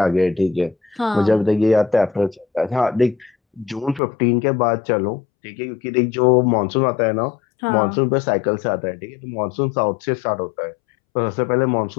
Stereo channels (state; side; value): drops out; right; at 4.0 s